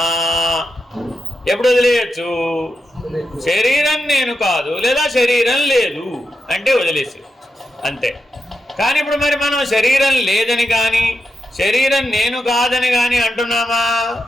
ఎప్పుడు వదిలేయచ్చు? శరీరం నేను కాదు లేదా శరీరం లేదు అంటే వదిలేసి, అంతే. కానీ ఇప్పుడు మరి మనం శరీరం లేదని కానీ శరీరం నేను కాదని కానీ అంటున్నామా?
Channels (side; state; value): both; normal; correlation 0.87